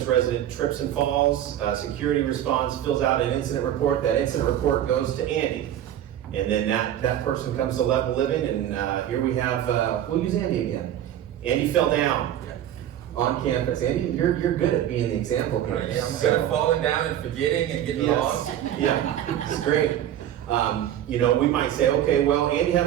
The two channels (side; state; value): left; quieter; 11.2 dB